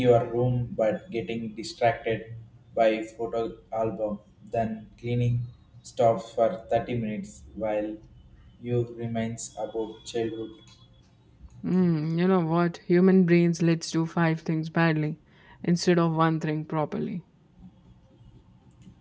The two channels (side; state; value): both; identical; correlation 1.00